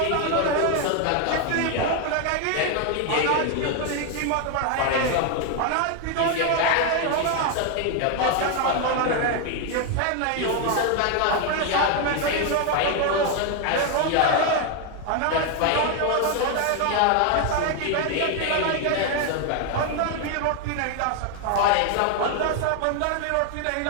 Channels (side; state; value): both; different; correlation 0.01